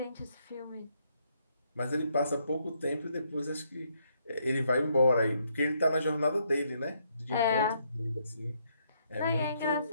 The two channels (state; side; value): inverted; both; correlation -0.73